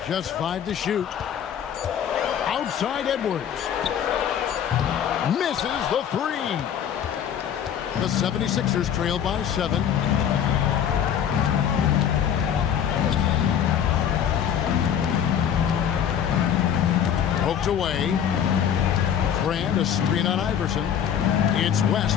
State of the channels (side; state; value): right; quieter; 9.0 dB